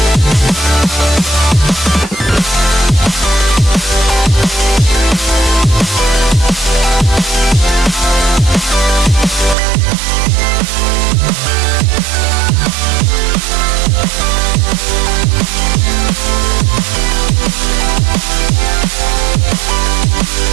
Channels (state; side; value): drops out; left; at 9.6 s